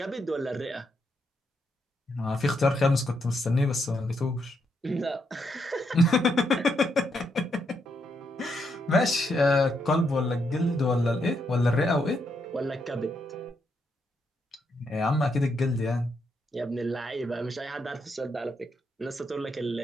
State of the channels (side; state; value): both; normal; correlation 0.79